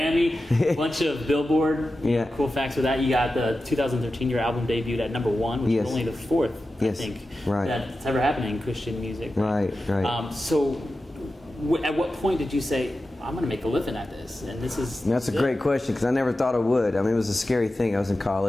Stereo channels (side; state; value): both; normal; correlation 0.93